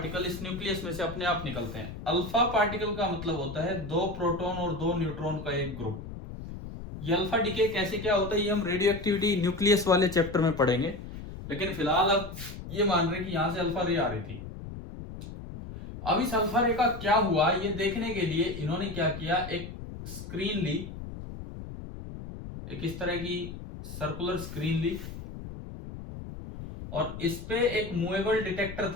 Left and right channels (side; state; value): left; noise; rumble, 10 dB below the sound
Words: इस न्यूक्लियस में से अपने आप निकलते हैं। अल्फा पार्टिकल का मतलब होता है 2 प्रोटॉन और 2 न्यूट्रॉन का एक ग्रुप। ये अल्फा डिके कैसे क्या होता है, ये हम रेडियो एक्टिविटी न्यूक्लियस वाले चैप्टर में पढ़ेंगे, लेकिन फिलहाल अब ये मान रहे कि यहां से अल्फा रे आ रही थी। अब इस अल्फा रे का क्या हुआ, ये देखने के लिए इन्होंने क्या किया, एक स्क्रीन ली, एक इस तरह की सर्कुलर स्क्रीन ली, और इस पे एक मूवेबल डिटेक्टर